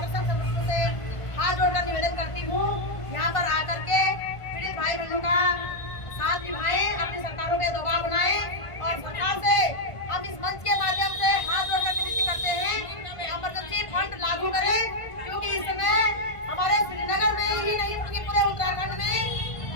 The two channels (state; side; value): late; right; 1.5 ms